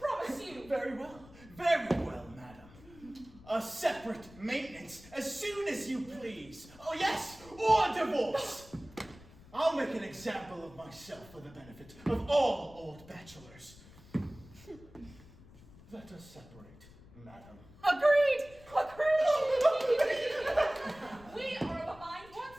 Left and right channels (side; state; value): left; noise; rumble, 21 dB below the sound